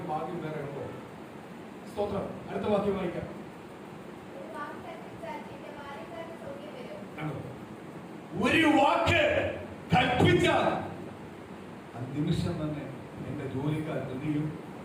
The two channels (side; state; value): both; identical; correlation 1.00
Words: ഭാഗ്യം വേറെ ഉണ്ടോ? സ്തോത്രം. അടുത്ത വാക്യം വായിക്കാം. ഒരു വാക്ക് കൽപ്പിച്ചാൽ ആ നിമിഷം തന്നെ എന്റെ ജോലിക്കാർ എന്തെയും